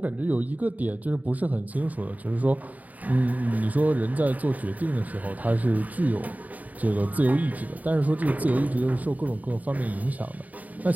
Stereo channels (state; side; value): late; left; 0.075 ms